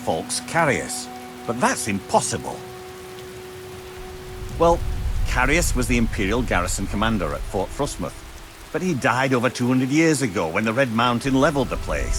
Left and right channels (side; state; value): both; identical; correlation 1.00